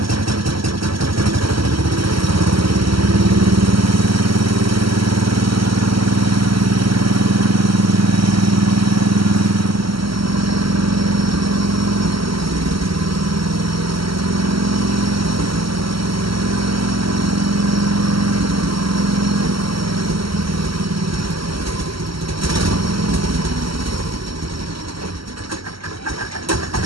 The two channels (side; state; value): left; late; 0.75 ms